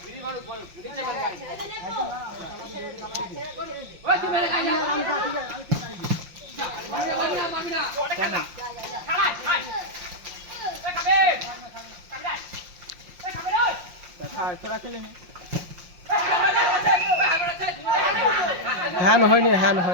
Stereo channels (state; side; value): late; left; 5.7 ms